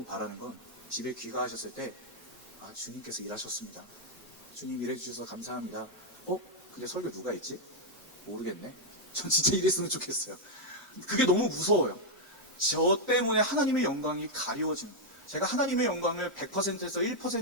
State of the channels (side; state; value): both; normal; correlation -0.02